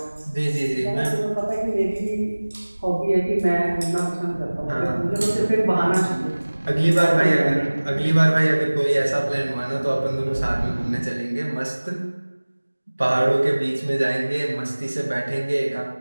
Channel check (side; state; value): both; inverted; correlation -1.00